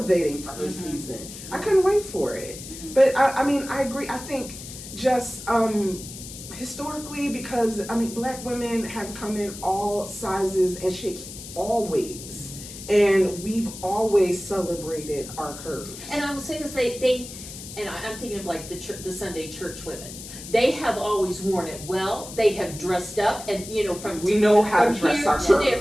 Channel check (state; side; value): noise; left; hiss, 12 dB below the sound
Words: for her season. I couldn't wait for it. But I agree. I think just historically, because Black women have come in all sizes and shapes always, and we've always celebrated our curves. And I will say this: I'm thinking of like the Sunday church women. They have always worn it well. They have dressed up, and we know how to dress our